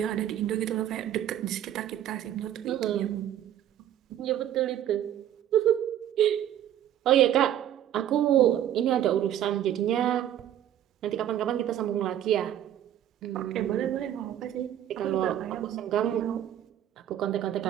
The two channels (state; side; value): quieter; left; 11.3 dB